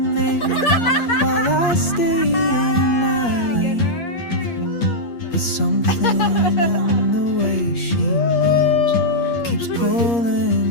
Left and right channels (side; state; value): right; late; 8.5 ms